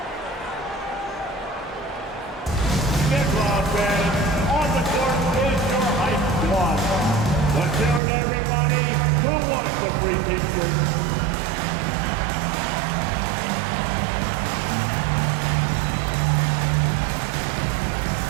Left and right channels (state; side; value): drops out; left; at 8.0 s